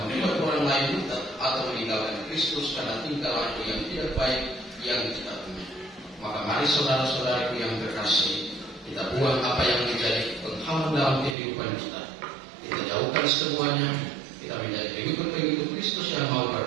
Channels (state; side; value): drops out; left; at 11.4 s